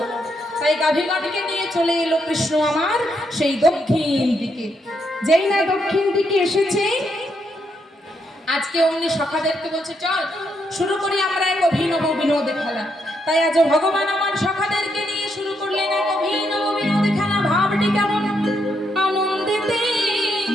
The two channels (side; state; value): both; normal; correlation 0.78